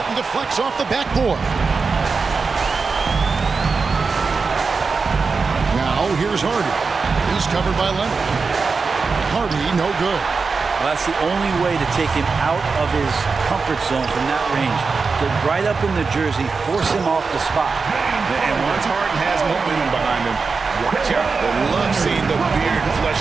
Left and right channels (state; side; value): quieter; left; 4.7 dB